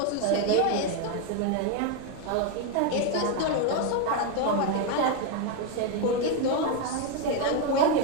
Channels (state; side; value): different; both; correlation 0.01